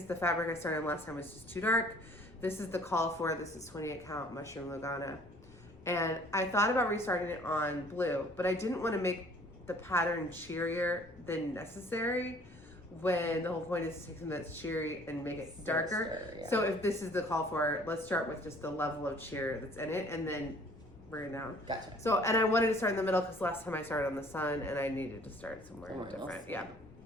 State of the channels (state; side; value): noise; left; rumble, 22 dB below the sound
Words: the fabric I started last time was just too dark. This is the call for, this is 28 count Mushroom Lugana. And I thought about restarting it on blue, but I didn't want to make the pattern cheerier than necessary when the whole point is to take something that's cheery and make it darker. Yeah. So if this is the call for, let's start with just the level of cheer that's in it and then bring it down. Gotcha. So, and I wanted to start in the middle because last time I started on the sun and I needed to start somewhere different. Else. Yeah.